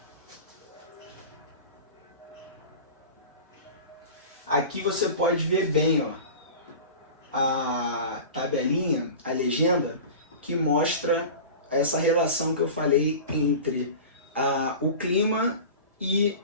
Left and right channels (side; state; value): both; inverted; correlation -0.34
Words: Aqui você pode ver bem, ó, a tabelinha, a legenda, que mostra essa relação que eu falei entre o clima e